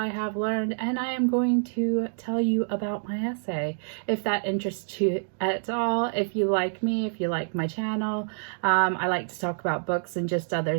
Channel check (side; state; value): left; silent; digital silence